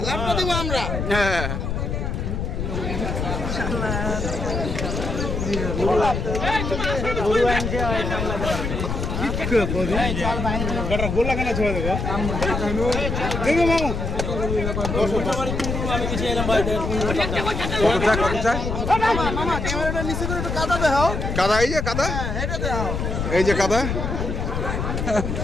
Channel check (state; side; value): noise; left; rumble, 2 dB below the sound